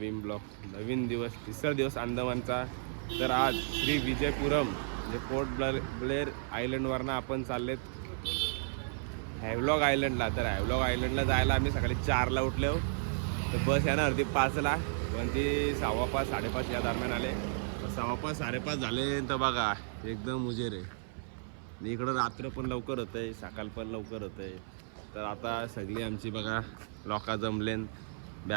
ब्लॉग, नवीन दिवस, तिसरा दिवस अंदमानचा. तर आज श्री विजयपुरम म्हणजे पोर्ट ब्लेअर आयलंडवरनं आपण चाललेत हॅव्हलॉग आयलंडला. तर हॅव्हलॉग आयलंडला जायला आम्ही सकाळी 4ला उठलो. तर बस येणार होती 5ला, पण ती 5:15 5:30 या दरम्यान आले. 5:15 5:30 झाले तर बघा एकदम उजेर आहे. इकडं रात्र पण लवकर होतं आहे, सकाळ पण लवकर होतं आहे. तर आता सगळी आमची बघा लोका जमलेन,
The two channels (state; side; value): silent; left; 55 dB below the other